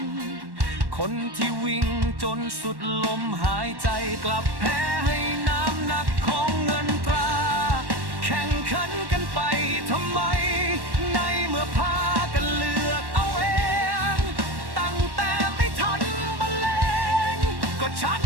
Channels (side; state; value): left; late; 1.1 ms